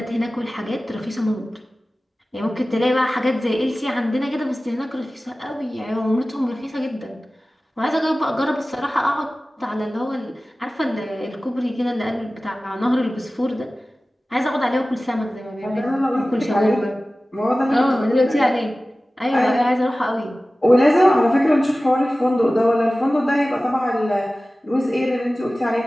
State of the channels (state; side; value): normal; both; correlation 0.97